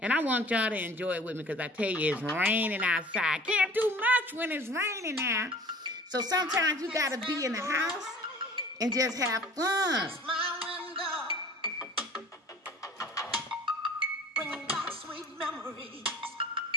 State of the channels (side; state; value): both; normal; correlation 0.46